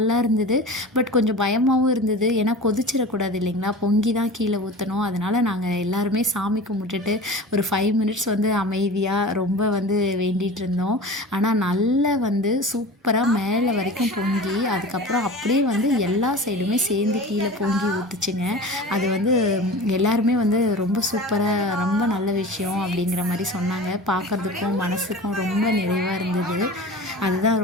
இருந்தது, பட் கொஞ்சம் பயமாகவும் இருந்தது. ஏன்னா கொதிச்சிடக்கூடாது இல்லைங்களா, பொங்கி தான் கீழே ஊற்றணும். அதனால் நாங்கள் எல்லாருமே சாமி கும்பிட்டுட்டு ஒரு 5 மினிட்ஸ் வந்து அமைதியாக ரொம்ப வந்து வேண்டிகிட்டு இருந்தோம். ஆனால் நல்லா வந்து சூப்பராக மேலே வரைக்கும் பொங்கி, அதுக்கப்புறம் அப்படியே வந்து எல்லா சைடுமே சேர்ந்து கீழே பொங்கி ஊற்றுச்சுங்க. அது வந்து எல்லாருமே வந்து ரொம்ப சூப்பராக, ரொம்ப நல்ல விஷயம் அப்படிங்கிற மாதிரி சொன்னாங்க. பார்க்குறதுக்கும் மனசுக்கும் ரொம்ப நிறைவாக இருந்தது. அதுதான்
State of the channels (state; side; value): normal; both; correlation 0.35